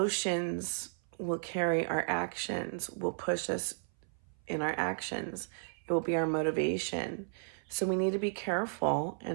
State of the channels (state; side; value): silent; left; 55 dB below the other